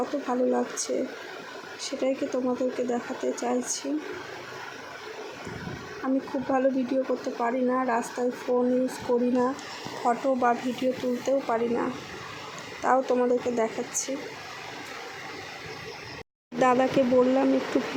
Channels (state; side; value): identical; both; correlation 1.00